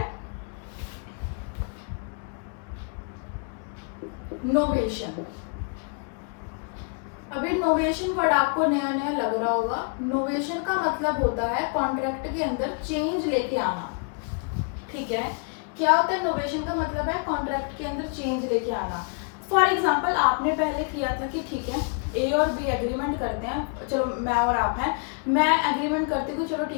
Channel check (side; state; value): right; quieter; 37.7 dB